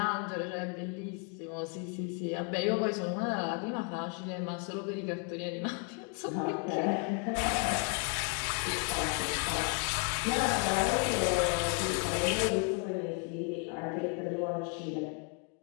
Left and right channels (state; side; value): quieter; right; 36.5 dB